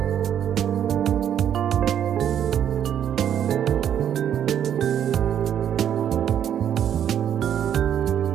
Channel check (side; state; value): left; quieter; 9.5 dB